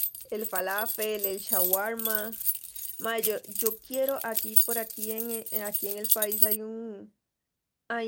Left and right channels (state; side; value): identical; both; correlation 1.00